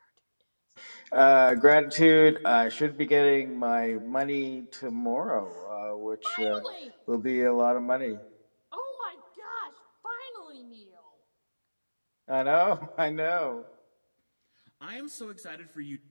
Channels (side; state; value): both; inverted; correlation -1.00